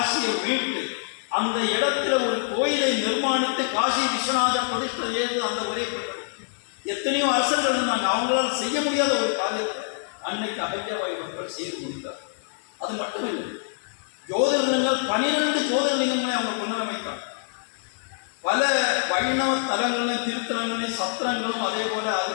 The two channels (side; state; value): right; silent; digital silence